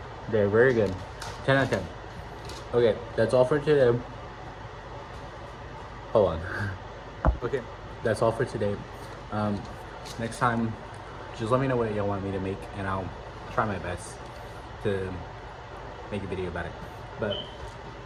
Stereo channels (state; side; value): identical; both; correlation 1.00